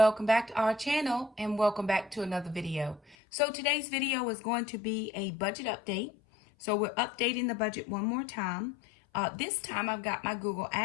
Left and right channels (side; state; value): right; drops out; at 3.2 s